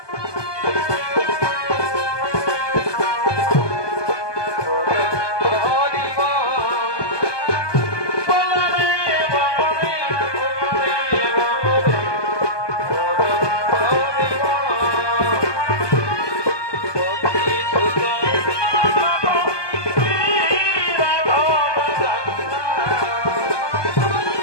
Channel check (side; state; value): right; late; 1.2 ms